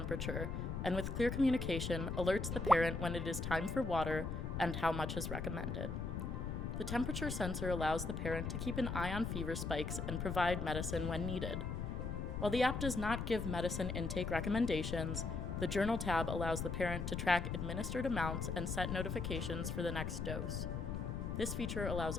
and with clear communication, alerts the parent when it is time for water and how much is recommended. The temperature sensor allows the parent to keep an eye on fever spikes and provide medicine when needed. While the app does not give medicine intake recommendations, the Journal tab allows the parent to track administered amounts and set notifications for the next dose. This feature allows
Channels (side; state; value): left; noise; rumble, 3 dB below the sound